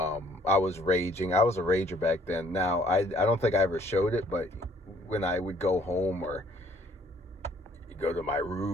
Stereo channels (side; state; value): both; normal; correlation 0.61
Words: was raging. I was a rager back then. Now, I don't think I ever showed it, but when I would go home or go to my